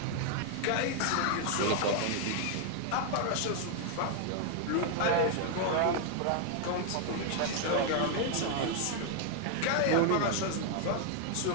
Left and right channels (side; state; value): both; different; correlation 0.00